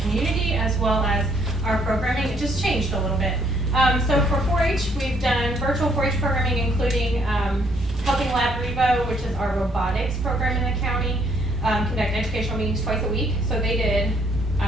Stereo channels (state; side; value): normal; both; correlation 0.67